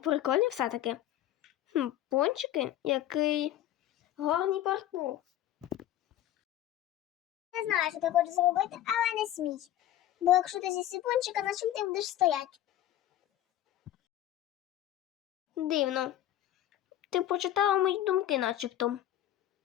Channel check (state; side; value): quieter; right; 12.8 dB